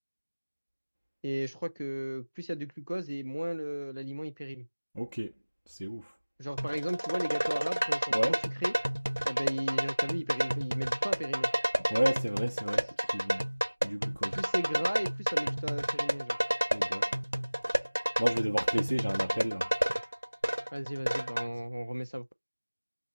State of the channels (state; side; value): inverted; both; correlation -1.00